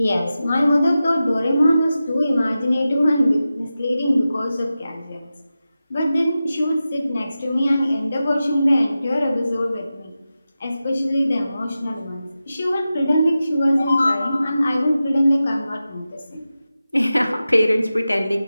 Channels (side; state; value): both; inverted; correlation -0.93